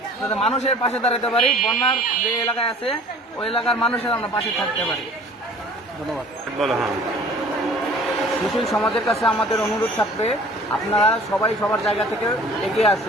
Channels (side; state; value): both; normal; correlation 0.49